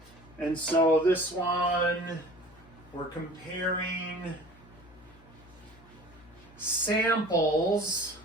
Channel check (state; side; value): noise; left; hum, 24 dB below the sound